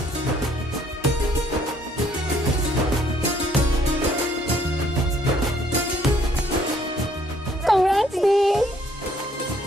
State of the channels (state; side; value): normal; both; correlation 0.64